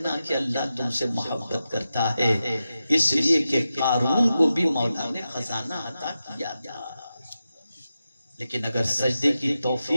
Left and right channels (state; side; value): inverted; both; correlation -0.90